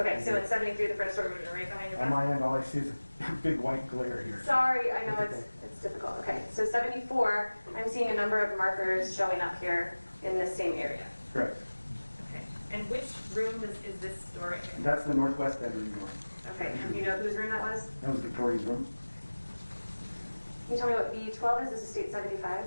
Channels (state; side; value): inverted; both; correlation -1.00